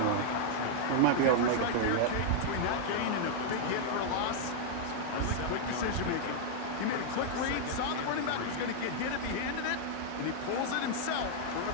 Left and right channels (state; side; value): different; both; correlation -0.01